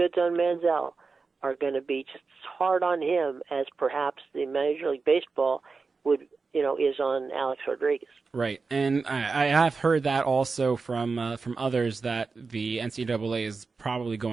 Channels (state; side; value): quieter; left; 4.5 dB